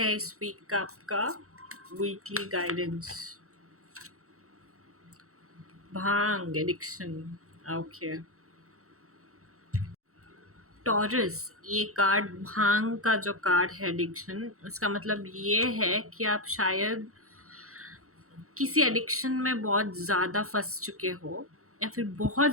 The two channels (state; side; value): late; left; 0.64 ms